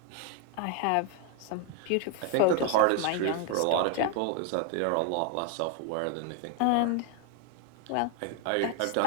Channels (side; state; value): both; different; correlation 0.01